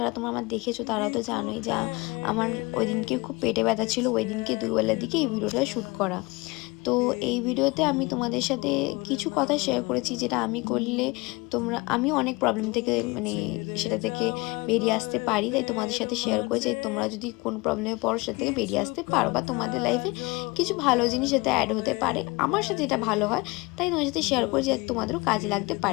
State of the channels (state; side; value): quieter; right; 24.7 dB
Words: তোমরা আমার দেখেছো তারা তো জানোই যে আমার ওই দিনকে খুব পেটে ব্যথা ছিল, ওই দিনকে দুপুরবেলার দিকে এই ভিডিওটা শ্যুট করা। তো এই ভিডিওতে আমি তোমাদের সাথে কিছু কথা শেয়ার করেছি যেটা আমি করলে আমি অনেক প্রবলেম থেকে সেটা থেকে বেরিয়ে আসতে পারি, তাই তোমাদের সাথে শেয়ার করেছি। তোমরা যদি কোন প্রবলেমে পড়ো সেটা থেকে বেরিয়ে আসতে পারো বা তোমাদের লাইফে কিছু ভালো জিনিস যাতে অ্যাড হতে পারে, আমার সাথে এটা ভালো হয় তাই তোমার সাথে শেয়ার করে যে তোমাদেরও কাজে লাগতে